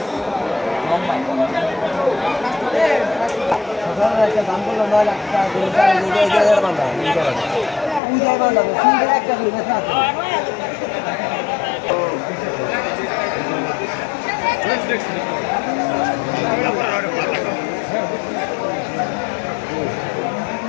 দাম করলো 9 লাখ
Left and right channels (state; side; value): drops out; right; at 8.0 s